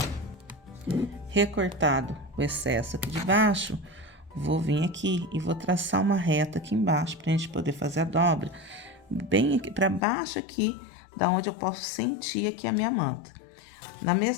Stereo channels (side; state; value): right; drops out; at 10.0 s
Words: Recortado o excesso aqui de baixo, vou vir aqui e vou traçar uma reta aqui embaixo pra gente poder fazer a dobra bem aqui para baixo aqui, da onde eu posso sentir aqui a minha manta. Na